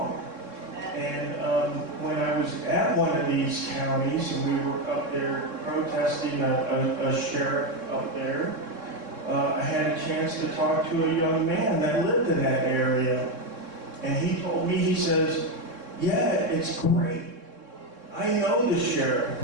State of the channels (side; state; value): left; late; 3.7 ms